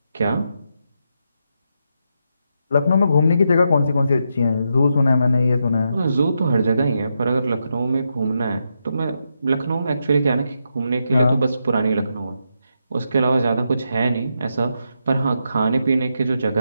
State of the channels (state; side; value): inverted; both; correlation -0.83